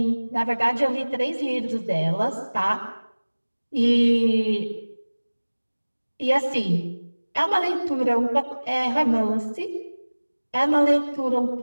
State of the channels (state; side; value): inverted; both; correlation -1.00